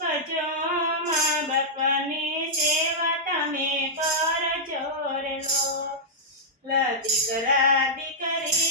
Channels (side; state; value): both; normal; correlation -0.09